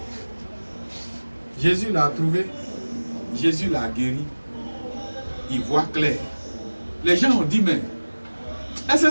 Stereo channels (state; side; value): inverted; both; correlation -1.00